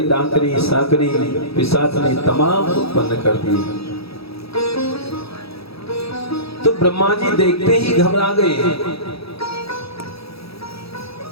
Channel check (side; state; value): right; late; 0.77 ms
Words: डाकनी साकनी पिशाचनी तमाम उत्पन्न कर दी। तो ब्रह्मा जी देखते ही घबरा गए।